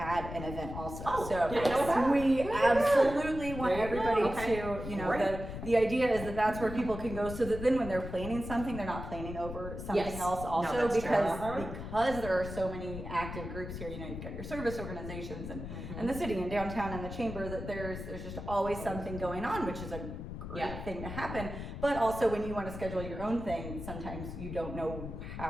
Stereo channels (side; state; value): left; noise; rumble, 8 dB below the sound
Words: an event also. Oh, so didn't know that. we absolutely want There you go. everybody Okay. to, you know, Great. the idea is that that's where people can go, so that then when they're planning something, they're not planning over something Yes. else No, also, that's true. because Uh-huh. because there are so many active groups here. You know, you've got your service organizations and the city and downtown and the chamber, that there's just always something going on, which is a great Yeah. thing to happen. But also when you want to schedule your own thing, sometimes you don't know